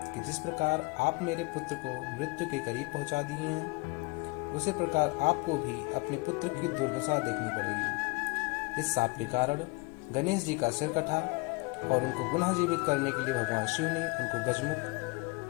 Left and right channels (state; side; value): quieter; right; 26.1 dB